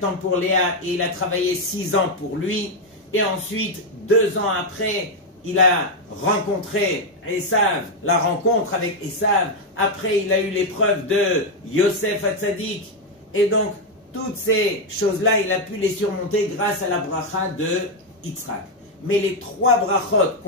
ans pour Léa, et il a travaillé 6 ans pour lui, et ensuite, 2 ans après, il a rencontré Esav, la rencontre avec Esav, après il a eu l'épreuve de Yosef Hatzadik, et donc toutes ces choses-là, il a pu les surmonter grâce à la bracha de Yitzhak. Mais les 3 brachot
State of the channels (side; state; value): both; normal; correlation 0.03